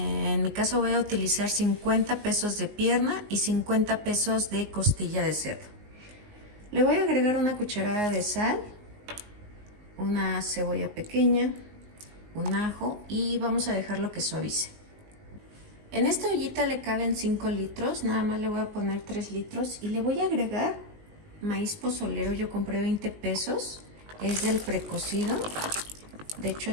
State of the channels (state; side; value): late; left; 19 ms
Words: mi caso voy a utilizar 50 pesos de pierna y 50 pesos de costilla de cerdo. Le voy a agregar una cucharada de sal, una cebolla pequeña, un ajo y vamos a dejarlo que suavice. En esta ollita le caben 5 litros, nada más le voy a poner 3 litros y le voy a agregar maíz pozolero. Yo compré 20 pesos, es del precocido. De hecho